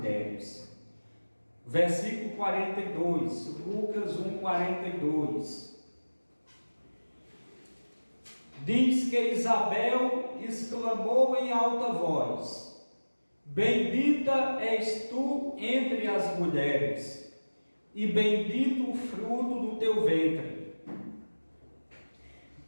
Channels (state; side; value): inverted; both; correlation -1.00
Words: Versículo 42, Lucas 1:42. Diz que Isabel exclamou em alta voz: bendita és tu entre as mulheres, e bendito o fruto do teu ventre.